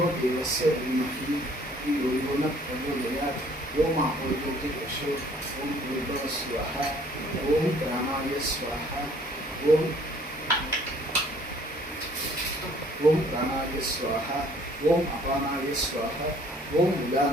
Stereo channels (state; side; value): normal; both; correlation 0.58